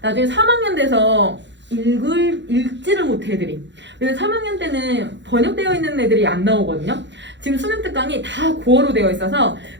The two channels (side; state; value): left; late; 0.52 ms